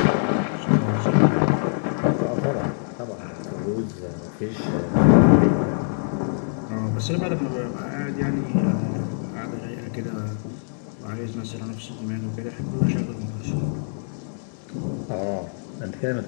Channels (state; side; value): silent; right; digital silence